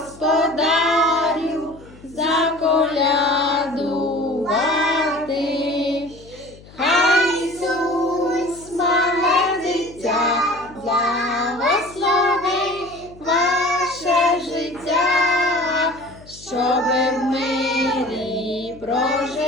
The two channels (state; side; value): noise; left; hum, 22 dB below the sound